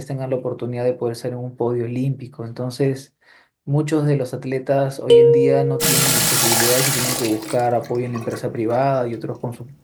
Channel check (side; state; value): both; identical; correlation 1.00